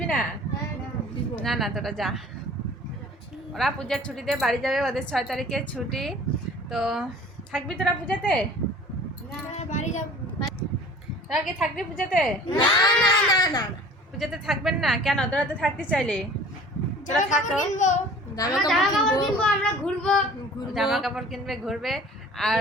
না? না না, তোরা যা। ওরা পূজার ছুটিতে বাড়ি যাবে, ওদের 6 তারিখে ছুটি। তো থাকবি তোরা পূজাতে? তোরা কি থাকবি পূজাতে? পূজাতে থাকবেন না কেন? তোরা তো থাকতে চাইলে তোরা থাকো। জামা কাপড় কিনবে, ঘুরবে। আর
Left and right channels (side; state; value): both; normal; correlation 0.46